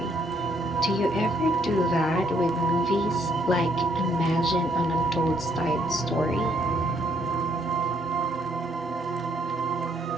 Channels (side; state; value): both; normal; correlation 0.69